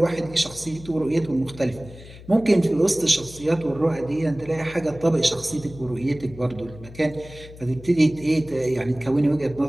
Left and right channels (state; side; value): noise; left; hum, 17 dB below the sound